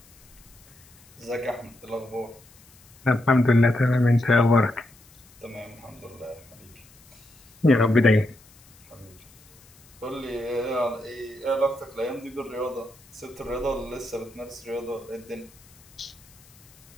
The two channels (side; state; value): left; noise; hiss, 26 dB below the sound